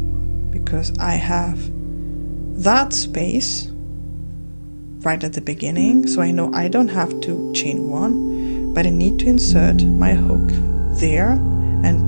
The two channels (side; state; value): both; inverted; correlation -1.00